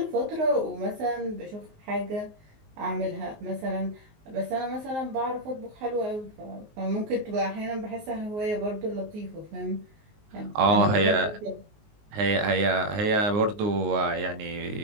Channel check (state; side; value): late; left; 19 ms